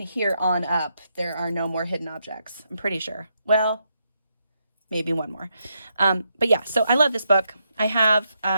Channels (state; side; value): inverted; both; correlation -0.80